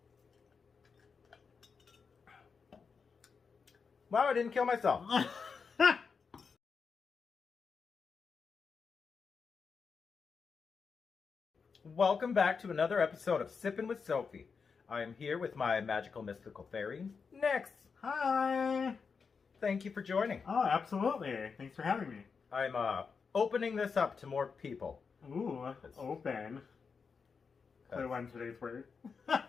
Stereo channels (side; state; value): right; quieter; 5.5 dB